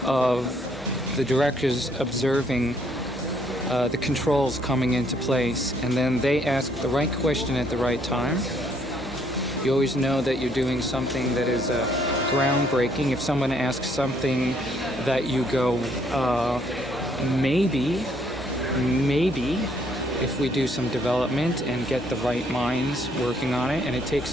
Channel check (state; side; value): normal; both; correlation 0.67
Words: of the directors observing the controls coming into place, and then they ask the right question at the right time. You always know that you're doing something that is groundbreaking. If someone asks something that you go, maybe, if we do some development and get the right minds working on it, and it takes